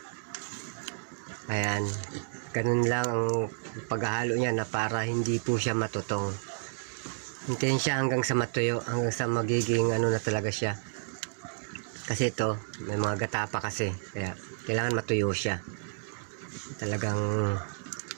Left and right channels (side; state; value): left; silent; digital silence